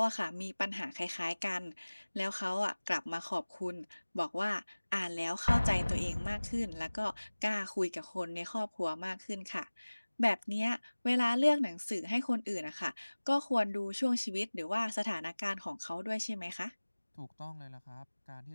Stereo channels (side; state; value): both; inverted; correlation -1.00